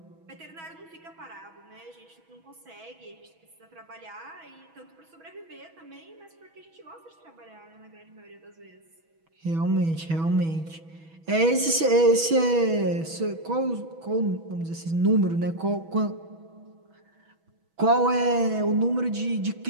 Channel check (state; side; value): late; left; 6.2 ms